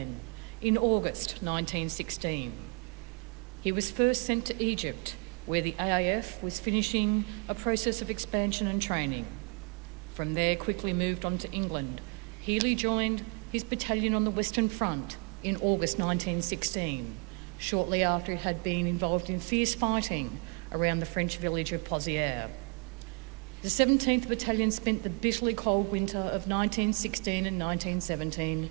in August 1916. He was first sent to Egypt, where the AIF was finishing a process of expansion and training. From there, quickly moved on to England. Hely joined his battalion on the Western Front in August 1916, shortly after it had been involved in fierce fighting around the French village of Pozières. The 17th Battalion spent the bitterly cold winter of 1916 and 1917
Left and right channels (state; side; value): quieter; left; 33.5 dB